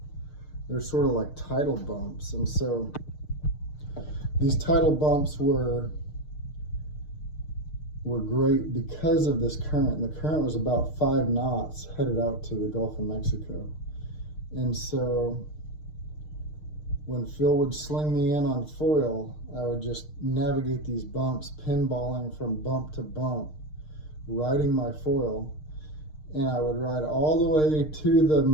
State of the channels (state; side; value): late; right; 6.6 ms